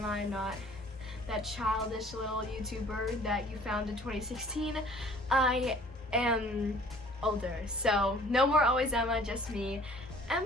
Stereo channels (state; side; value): normal; both; correlation 0.53